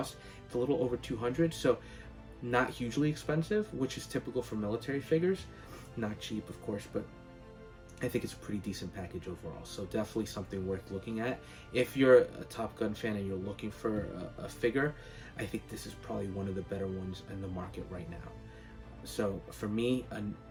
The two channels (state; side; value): identical; both; correlation 1.00